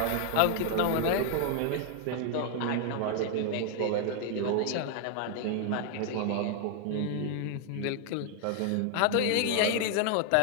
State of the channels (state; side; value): different; both; correlation 0.00